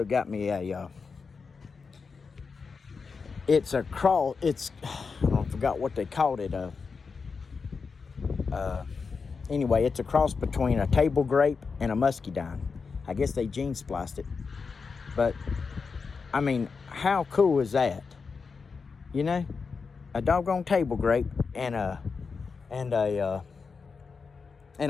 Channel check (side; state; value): right; quieter; 5.1 dB